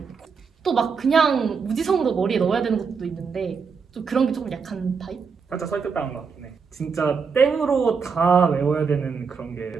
또 막 그냥 무지성으로 머리에 넣어야 되는 것도 있는데 좀 그런 게 조금 약한 타입? 살짝 설득당한 것 같긴 해. 진짜 땡으로 다 외워야 되는 그런 게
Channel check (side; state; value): left; quieter; 5.6 dB